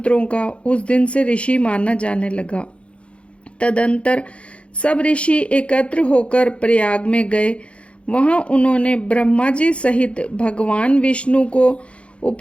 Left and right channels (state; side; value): late; right; 0.060 ms